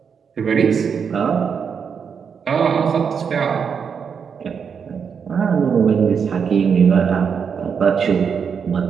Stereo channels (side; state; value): left; quieter; 6.6 dB